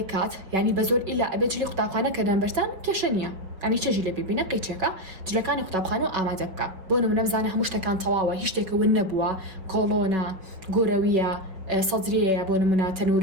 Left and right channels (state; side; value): late; left; 5.4 ms